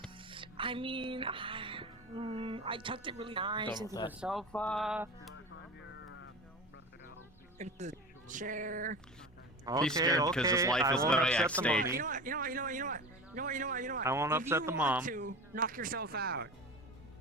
I mean, I tucked it really nice into the sofa, into the chair. He's scared because his life is literally at stake. You know what? I won't upset the mom. If you want to, knock yourself out.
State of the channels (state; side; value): normal; both; correlation 0.31